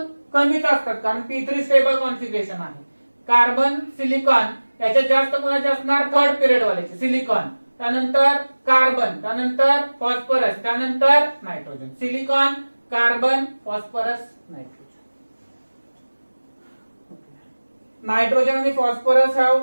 कमीच असतात, कारण P3 स्टेबल कॉन्फिगरेशन आहे. कार्बन, सिलिकॉन याच्यात जास्त कोणाचे असणार, थर्ड पिरियड वाल्याचे, सिलिकॉन. त्यानंतर कार्बन, त्यानंतर फॉस्फरस, त्यानंतर nitrogen. Silicon, carbon, phosphorus, nitrogen. Nitrogen आणि phosphorus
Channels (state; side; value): inverted; both; correlation -1.00